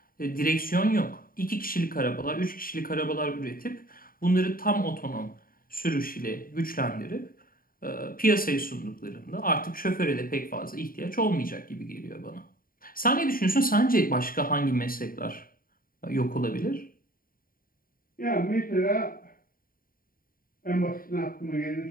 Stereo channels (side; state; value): right; late; 0.41 ms